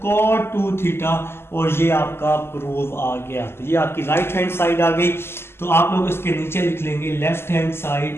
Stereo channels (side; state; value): right; late; 0.12 ms